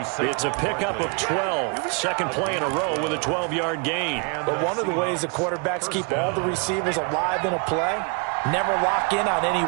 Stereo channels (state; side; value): quieter; left; 33.5 dB